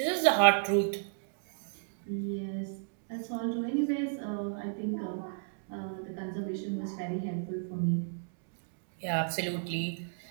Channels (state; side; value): silent; left; digital silence